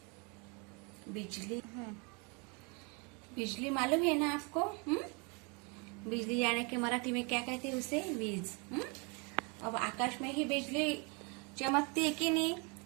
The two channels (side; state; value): left; quieter; 32.4 dB